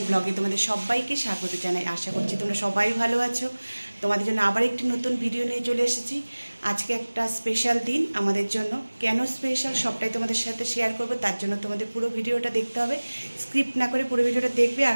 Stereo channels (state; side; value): inverted; both; correlation -1.00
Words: ব্লগে তোমাদের সবাইকে স্বাগত জানাই। আশা করছি তোমরা সবাই ভালো আছো। তোমাদের জন্য আবার একটি নতুন ভিডিও নিয়ে চলে এসেছি। আজকে একটা স্পেশাল দিন আমাদের জন্য। কেন স্পেশাল সবটাই তোমাদের সাথে শেয়ার করব, তার জন্য তোমাদের পুরো ভিডিওটা দেখতে হবে। স্ক্রিপ্ট না করে পুরো ভিডিওটা দেখবে আর